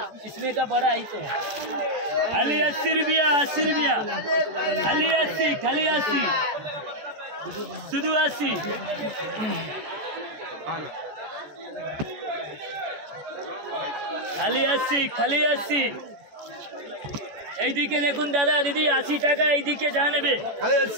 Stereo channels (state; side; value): late; left; 14 ms